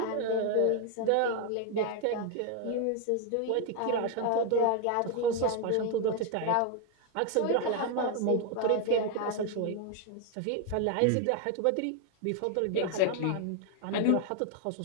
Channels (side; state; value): both; different; correlation 0.01